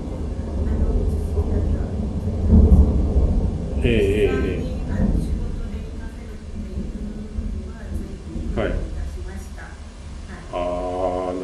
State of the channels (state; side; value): identical; both; correlation 1.00